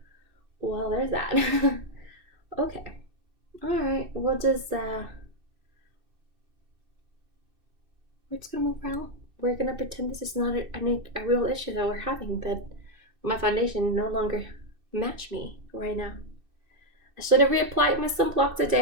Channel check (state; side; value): late; left; 2.6 ms